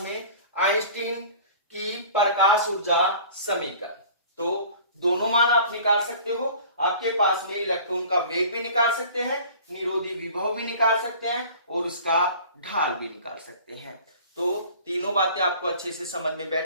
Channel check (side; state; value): both; inverted; correlation -0.45